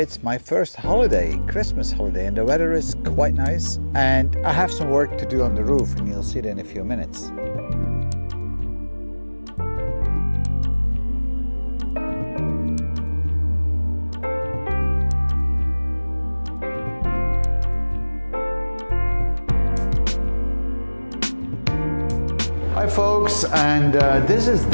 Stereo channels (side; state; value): both; inverted; correlation -1.00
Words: it's my first holiday, Christmas holiday, and the weather is quite nice, and I have some work to do on the roof and you'll see that in a few minutes. Hi folks, and this is